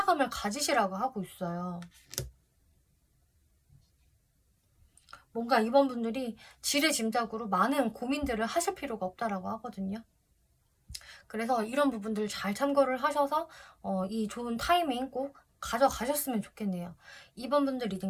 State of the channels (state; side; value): identical; both; correlation 1.00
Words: 가지시라고 하고 있어요. 뭔가 이번 분들이 지레짐작으로 많은 고민들을 하실 필요가 없다라고 하거든요. 그래서 이런 부분들 잘 참고를 하셔서 이 좋은 타이밍 꼭 가져가셨으면 좋겠네요. 2번 분들 리딩